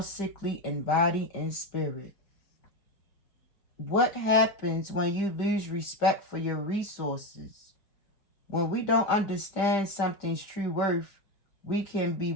in body and spirit. What happens when you lose respect for your resources? When we don't understand something's true worth, we can be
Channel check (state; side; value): late; right; 5.1 ms